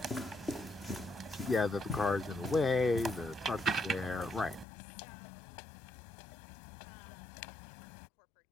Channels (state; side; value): drops out; right; at 4.7 s